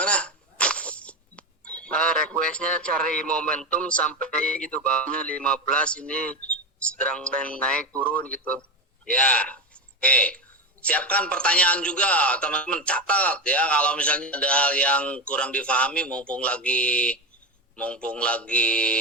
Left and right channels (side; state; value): both; normal; correlation 0.17